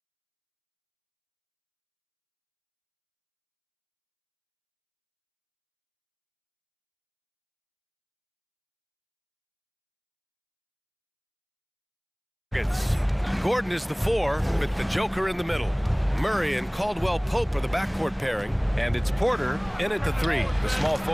Gordon is the 4 with the Joker in the middle. Murray and Caldwell-Pope are the backcourt pairing, and it's Porter in at the 3, the small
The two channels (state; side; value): identical; both; correlation 1.00